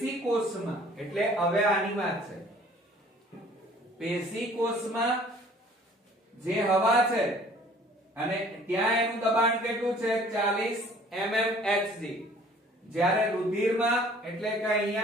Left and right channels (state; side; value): normal; both; correlation 0.53